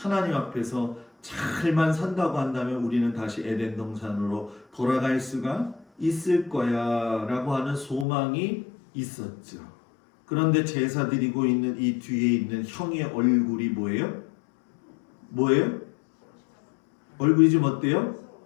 앞에서 잘만 산다고 한다면 우리는 다시 에덴 동산으로 돌아갈 수가 있을 거야 라고 하는 소망이 있었죠. 그런데 제사 드리고 있는 이 뒤에 있는 형의 얼굴이 뭐예요? 얼굴이 좀 어때요?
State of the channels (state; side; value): drops out; right; at 8.1 s